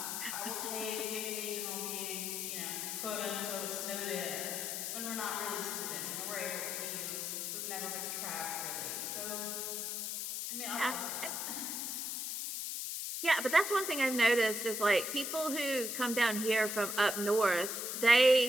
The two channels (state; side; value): noise; left; hiss, 3 dB below the sound